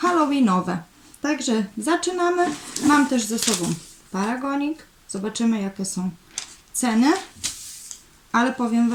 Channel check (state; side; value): identical; both; correlation 1.00